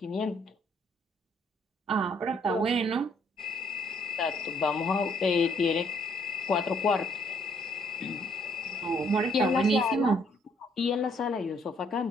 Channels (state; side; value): normal; both; correlation 0.66